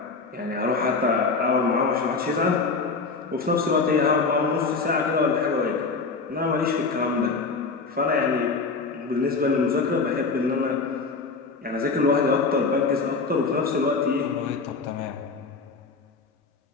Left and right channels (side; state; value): right; quieter; 4.4 dB